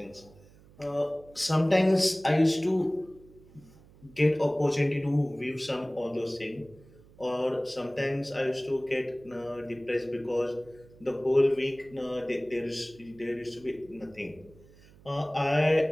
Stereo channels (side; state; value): right; noise; hum, 25 dB below the sound